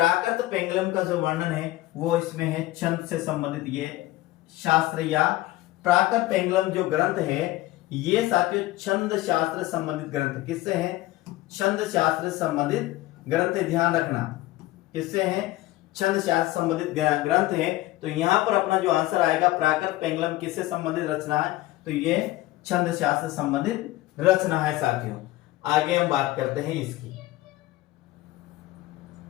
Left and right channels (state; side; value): quieter; right; 17.3 dB